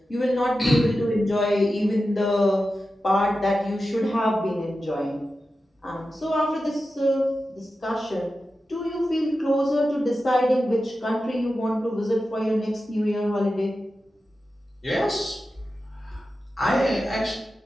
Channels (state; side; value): normal; both; correlation 0.92